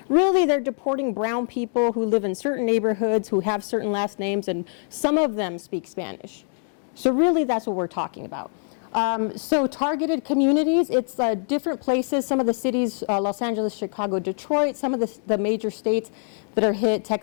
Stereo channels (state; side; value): silent; right; 60 dB below the other